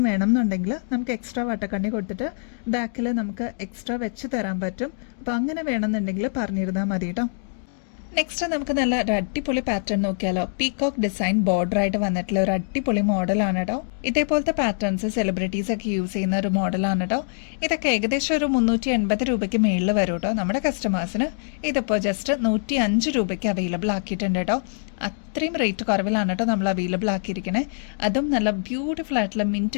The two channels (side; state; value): right; silent; digital silence